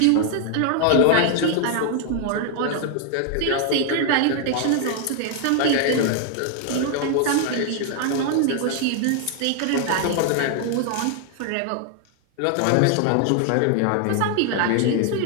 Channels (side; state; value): both; different; correlation 0.00